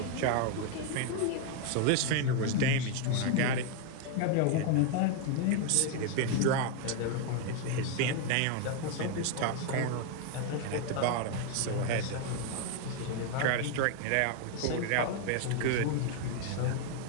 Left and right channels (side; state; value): both; different; correlation 0.01